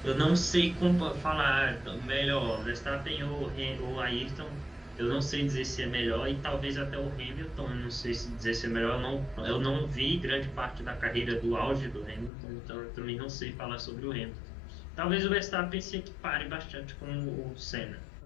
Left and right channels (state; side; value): drops out; right; at 12.3 s